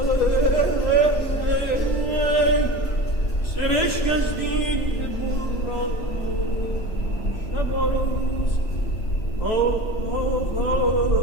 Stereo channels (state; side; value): late; right; 3.0 ms